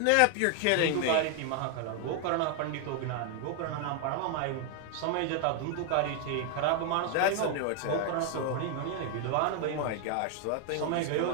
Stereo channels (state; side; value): different; both; correlation 0.00